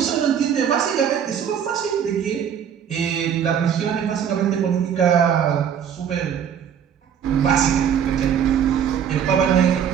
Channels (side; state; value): left; quieter; 8.4 dB